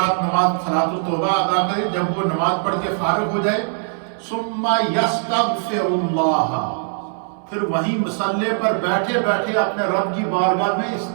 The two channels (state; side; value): silent; left; 65 dB below the other